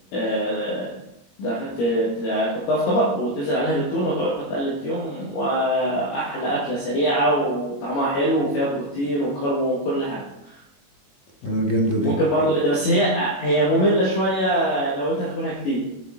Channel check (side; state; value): right; late; 21 ms